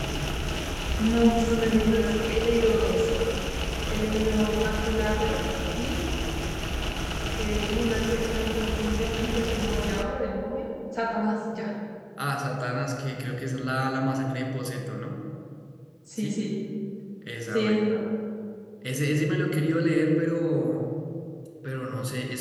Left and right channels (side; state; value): both; identical; correlation 1.00